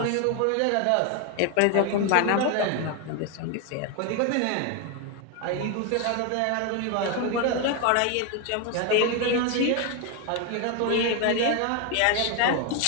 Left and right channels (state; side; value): different; both; correlation 0.01